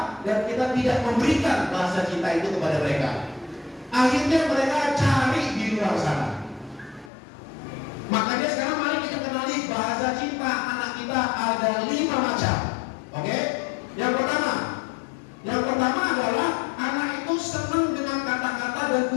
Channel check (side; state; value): right; drops out; at 7.1 s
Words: dan kita tidak memberikan bahasa cinta itu kepada mereka. Akhirnya mereka cari di luar sana. Makanya sekarang mari kita kenali bahasa cinta anak kita ada 5 macam. Oke? Yang pertama adalah anak itu senang dengan kata-kata dan